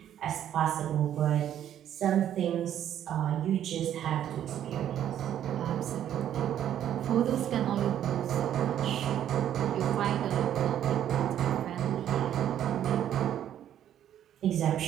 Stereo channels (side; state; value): left; quieter; 10.6 dB